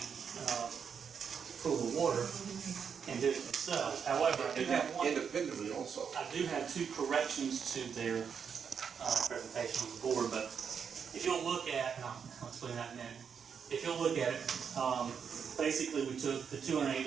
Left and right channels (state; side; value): quieter; left; 6.9 dB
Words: pool of water and did it themselves. However, I do have one independently also. I do have 2 corrections to their presentation on the board, but if you'll look at, and I'll explain that in a minute. If you'll look at it, basically we took the